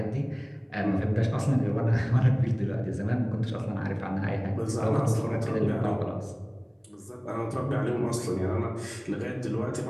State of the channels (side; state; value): both; identical; correlation 1.00